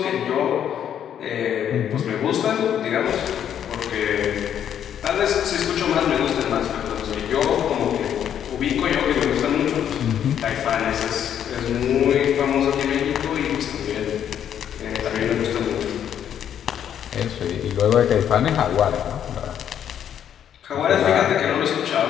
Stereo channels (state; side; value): quieter; right; 9.5 dB